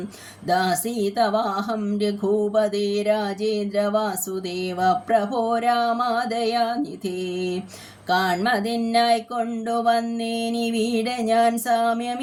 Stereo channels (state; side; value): identical; both; correlation 1.00